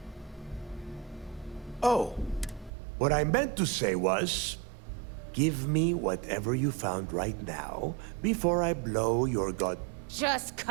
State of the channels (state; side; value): drops out; left; at 2.7 s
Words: Oh, what I meant to say was, give me whatever you found right now before I blow your god. Just